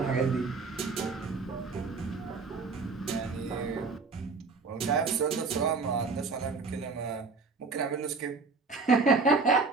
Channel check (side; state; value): left; quieter; 4.3 dB